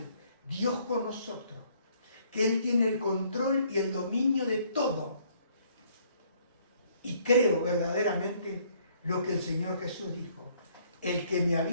Dios con nosotros, que Él tiene el control y el dominio de todo. Y creo verdaderamente lo que el Señor Jesús dijo: el que me ha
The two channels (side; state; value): both; inverted; correlation -0.64